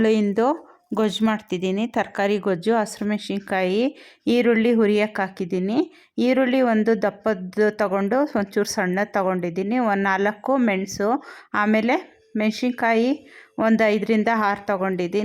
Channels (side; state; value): both; identical; correlation 1.00